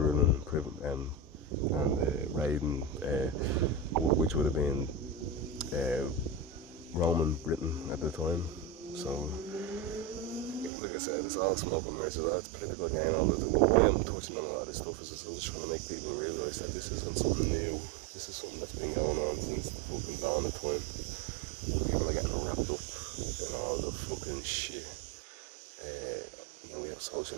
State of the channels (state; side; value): drops out; left; at 10.7 s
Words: and raiding, which would have been Roman Britain at the time. So, like I said, it's all smoke and mirrors. It's political game. Why I'm touching on a lot of this stuff is I'm just trying to make people realise that this isn't something new. This is something that's been going on since the fucking dawn of time. And people are getting wrapped up in all the fucking shit. We have social